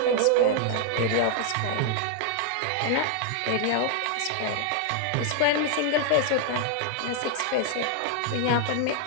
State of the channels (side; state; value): both; different; correlation 0.00